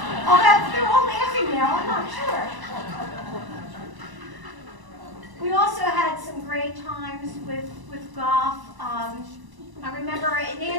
Oh, they're all laughing now, I'm not sure. We also had some great times with golf. I remember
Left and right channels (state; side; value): late; left; 1.0 ms